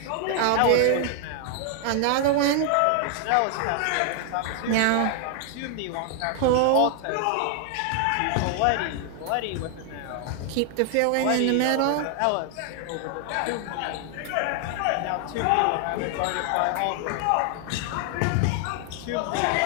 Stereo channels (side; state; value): both; different; correlation 0.00